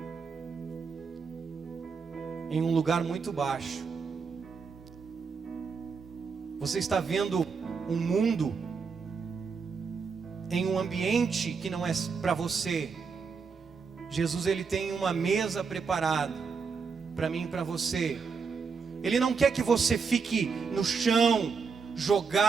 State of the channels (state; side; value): quieter; left; 5.4 dB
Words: em um lugar muito baixo. Você está vendo um mundo em um ambiente que não é para você. Jesus, ele tem uma mesa preparada para mim e para você. Ele não quer que você fique no chão,